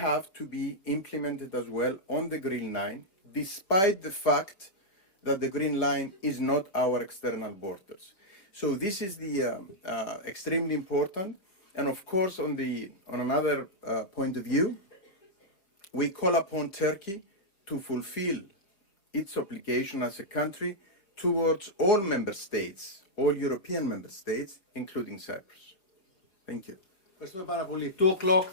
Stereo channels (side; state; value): right; late; 5.0 ms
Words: to be implemented as well on the Green Line, despite the fact that the Green Line is not our external borders. So this is the extremely important. And of course, on another point of view, we call upon Turkey to fulfill its obligation as a country towards all member states, all European member states, including Cyprus. Thank you. Ευχαριστούμε πάρα πολύ. 2 o'clock